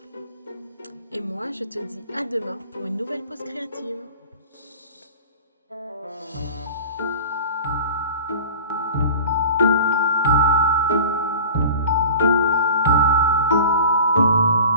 Et moi, je te dis à demain pour une nouvelle pause créative.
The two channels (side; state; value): both; inverted; correlation -0.37